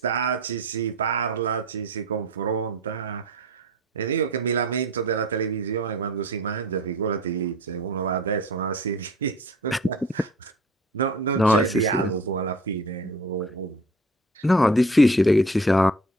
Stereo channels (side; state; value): both; normal; correlation 0.44